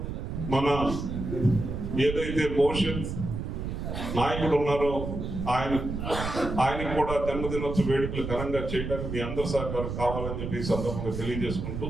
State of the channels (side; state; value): right; noise; rumble, 5 dB below the sound